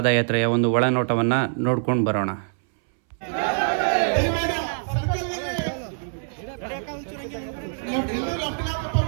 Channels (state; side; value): silent; left; 62 dB below the other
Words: ಒಂದು ಒಳನೋಟವನ್ನು ನೋಡ್ಕೊಂಡು ಬರೋಣ.